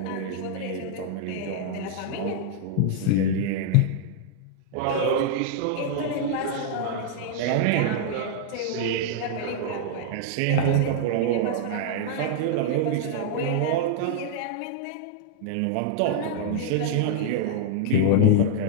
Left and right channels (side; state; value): both; different; correlation -0.01